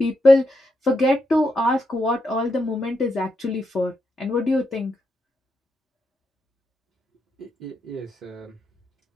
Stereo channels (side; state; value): both; normal; correlation 0.83